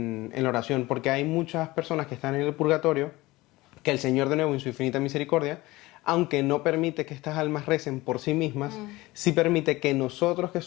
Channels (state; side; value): quieter; right; 19.9 dB